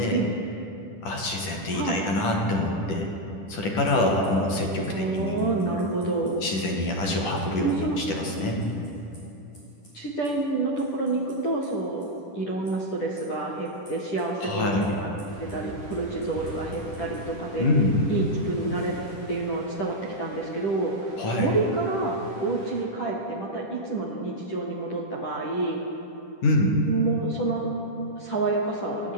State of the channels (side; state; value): right; late; 10 ms